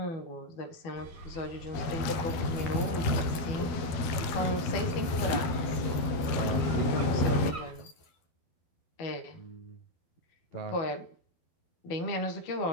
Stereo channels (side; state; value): right; late; 12 ms